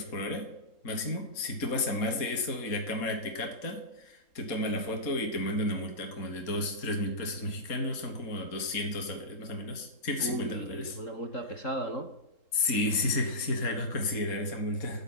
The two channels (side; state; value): right; late; 3.8 ms